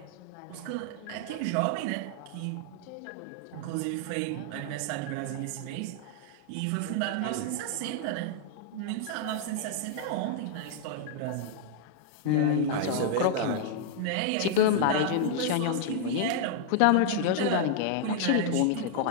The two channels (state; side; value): different; both; correlation -0.01